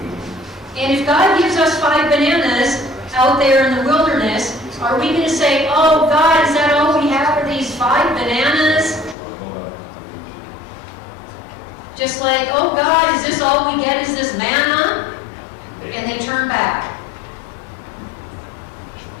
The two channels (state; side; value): drops out; right; at 9.2 s